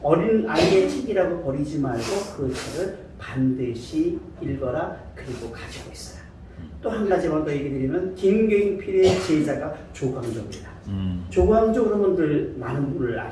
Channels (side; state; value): both; identical; correlation 1.00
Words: 어린 아이의 책이라고 버리지 말고 그 책을 반드시 읽어라. 그리고 가지고 있어라. 또 한 가지만 더 얘기 드리면 김경필의 제자가 조광조입니다. 조광조 그러면 많은 분을